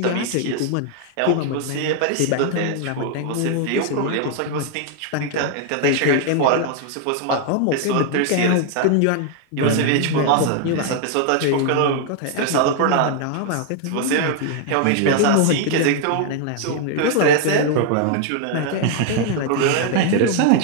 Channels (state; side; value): different; both; correlation 0.00